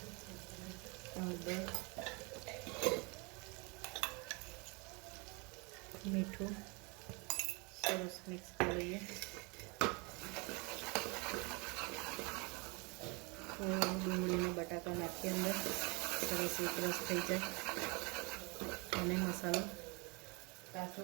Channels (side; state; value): left; quieter; 29.9 dB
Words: હળદર, મીઠું સરસ મિક્સ કરી લઈએ. થોડું ડુંગળીને બટાકા નાખીએ અંદર. સરસ એક રસ થઈ જાય અને મસાલો કાચો